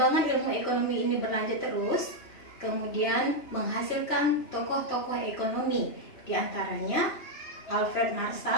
ilmu ekonomi ini berlanjut terus, kemudian menghasilkan tokoh-tokoh ekonomi, di antaranya Alfred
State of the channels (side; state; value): right; late; 2.9 ms